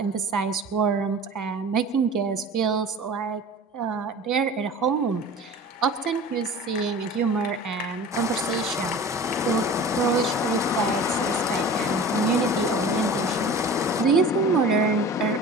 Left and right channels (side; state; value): both; normal; correlation 0.38